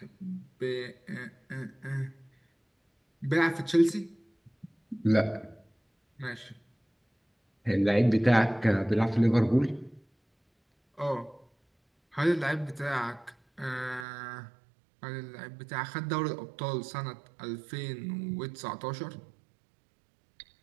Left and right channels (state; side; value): drops out; left; at 14.1 s